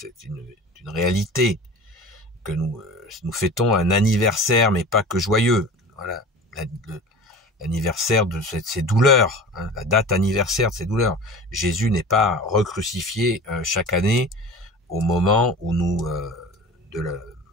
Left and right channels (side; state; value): both; normal; correlation 0.36